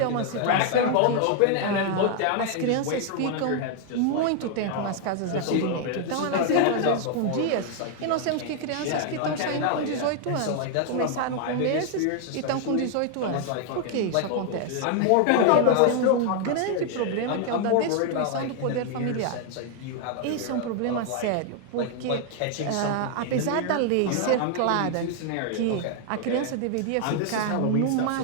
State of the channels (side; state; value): both; different; correlation 0.00